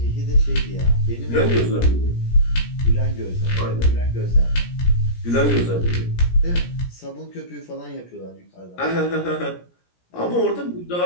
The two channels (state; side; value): late; right; 17 ms